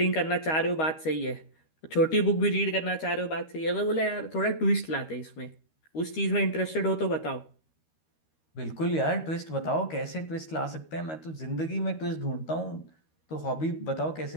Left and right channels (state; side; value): late; right; 13 ms